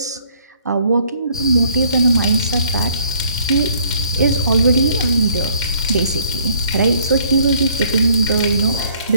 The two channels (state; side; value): inverted; both; correlation -0.62